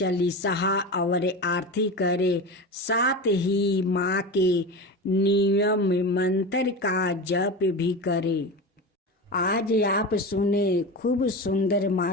और आरती करे। साथ ही माँ के नियम मंत्र का जप भी करे। आज आप सुने खूब सुंदर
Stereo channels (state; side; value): normal; both; correlation 0.25